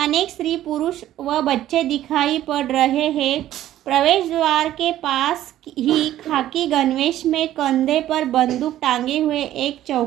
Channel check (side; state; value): left; quieter; 13.1 dB